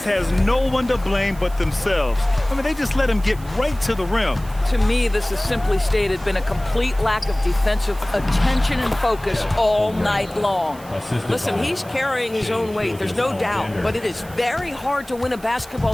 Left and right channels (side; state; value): right; noise; hiss, 22 dB below the sound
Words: has no one to blame but themselves. I mean, they just let him get right to the rim. To me, this has simply stated been a complete lack of defensive attention and focus all night long. Listen, he's carrying his own weight, there's no doubt, but it is very hard to win a